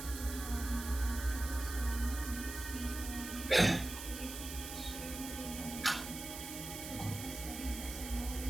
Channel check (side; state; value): right; noise; hiss, 8 dB below the sound